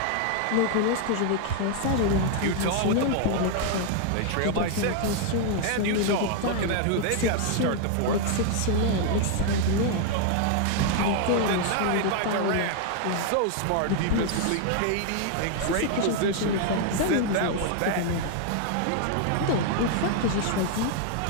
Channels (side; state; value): both; different; correlation 0.00